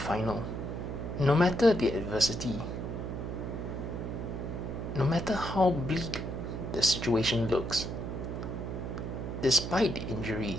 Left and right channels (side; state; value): right; noise; hum, 5 dB below the sound